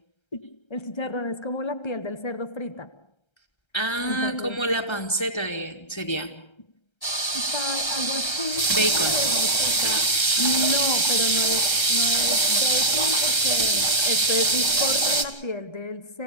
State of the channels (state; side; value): late; right; 1.3 ms